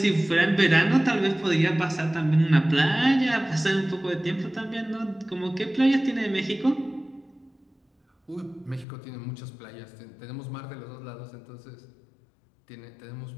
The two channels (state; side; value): drops out; right; at 8.8 s